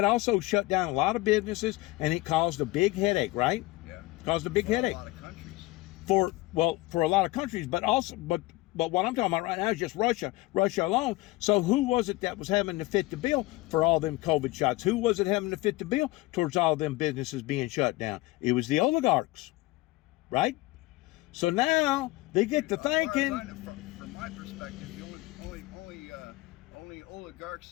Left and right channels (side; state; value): right; quieter; 20.2 dB